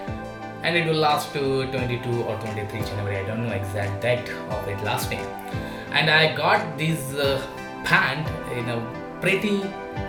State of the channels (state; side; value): identical; both; correlation 1.00